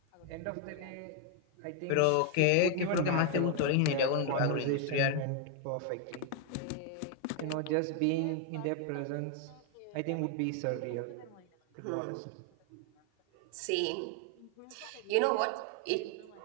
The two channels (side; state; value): both; different; correlation 0.01